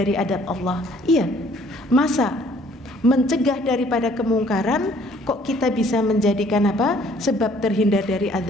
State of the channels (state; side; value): normal; both; correlation 0.59